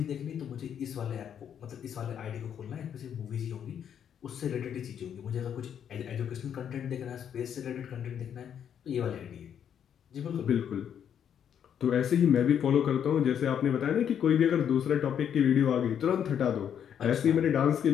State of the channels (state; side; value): quieter; right; 8.8 dB